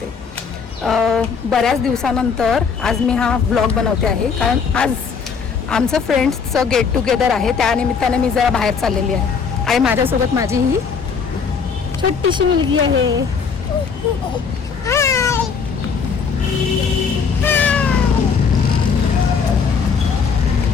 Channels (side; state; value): right; quieter; 5.9 dB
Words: बऱ्याच दिवसानंतर आज मी हा ब्लॉग बनवते आहे, कारण आज आमचं फ्रेंड्सचं गेट टुगेदर आहे. त्यानिमित्ताने मी जरा बाहेर चाललेली आहे आणि माझ्यासोबत माझी ही छोटीशी मुलगी आहे.